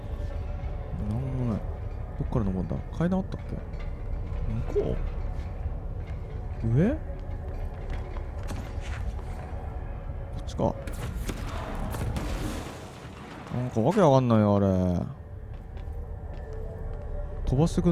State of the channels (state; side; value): identical; both; correlation 1.00